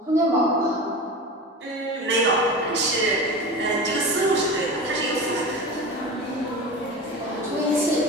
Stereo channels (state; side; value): normal; both; correlation 0.29